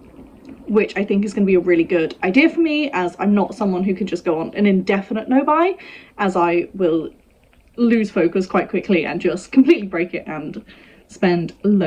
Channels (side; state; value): both; identical; correlation 1.00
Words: Which I think is going to be a really good idea for me, as I'm not someone who can just go on an indefinite no buy, as I will lose focus quite quickly and just completely break it and spend